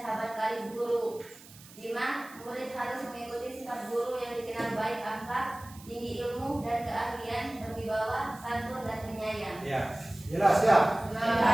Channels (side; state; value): right; noise; hiss, 20 dB below the sound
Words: sahabat karib guru. 5. Murid harus mengikuti sifat guru yang dikenal baik akhlak, tinggi ilmu dan keahlian, berwibawa, santun dan penyayang. Ya, jelas ya.